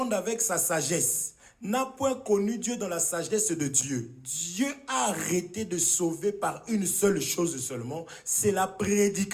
avec sa sagesse n'a point connu Dieu dans la sagesse de Dieu, Dieu a arrêté de sauver par une seule chose seulement, c'est la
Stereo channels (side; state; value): both; identical; correlation 1.00